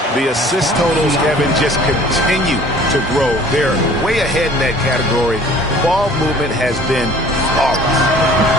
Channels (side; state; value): both; normal; correlation 0.50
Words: The assist totals, Kevin, just continue to grow. They're way ahead in that category. Ball movement has been flawless.